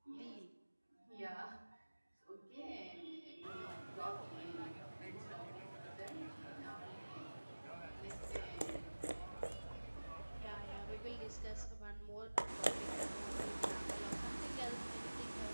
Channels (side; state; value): both; inverted; correlation -1.00